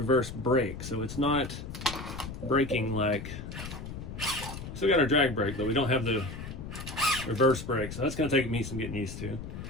brake, so it's not braking like. Still got our drag brake, but we don't have the reverse brake, so that's going to take me some getting used to.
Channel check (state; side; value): noise; left; rumble, 9 dB below the sound